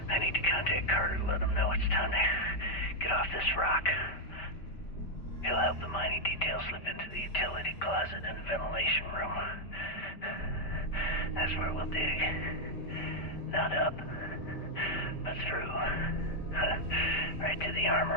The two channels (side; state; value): right; late; 5.1 ms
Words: I need to contact Carter to let him know it's time to get off this rock. He'll help the mining detail slip into the utility closet in the ventilation room. That's where we'll dig. Not up, but through. Right to the